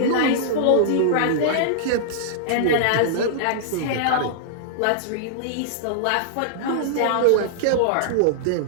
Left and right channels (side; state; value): both; different; correlation -0.01